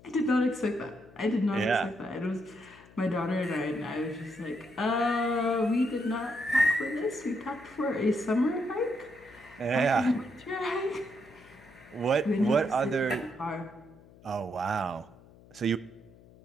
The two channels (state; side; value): noise; left; hum, 24 dB below the sound